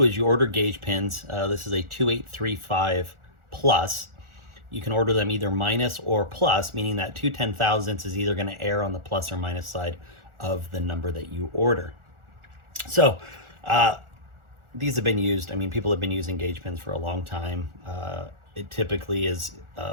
is you order gauge pins. This is a 2835 plus. You can order them either minus or plus, meaning that 2 10,000ths is either going to err on the plus or minus side of the number that you order. So these have been used. People have been using gauge pins for a long time. It typically is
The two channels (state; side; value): late; left; 1.4 ms